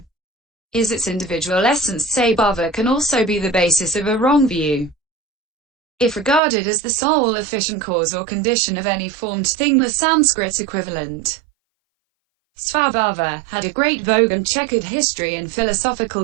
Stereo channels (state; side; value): drops out; left; at 6.4 s